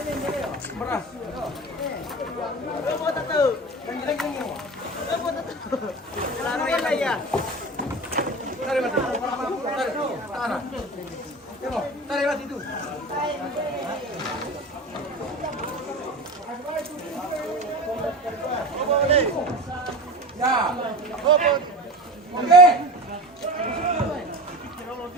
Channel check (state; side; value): normal; both; correlation 0.31